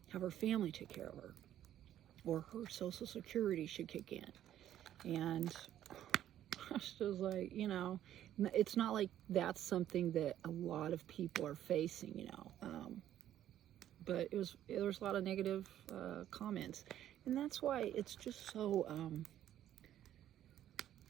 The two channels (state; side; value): quieter; left; 11.6 dB